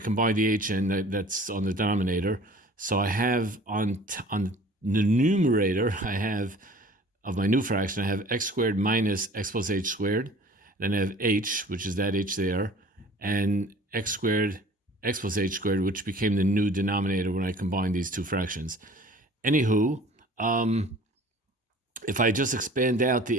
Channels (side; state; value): both; normal; correlation 0.47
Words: combined the h, and that's on the denominator. So I have on the numerator, I have of my new fraction, I have x squared minus x plus h squared. Then I have h, which is that h there, and x squared x plus h squared, which became the new denominator when I combined these two fractions. Anywho, if I just expand out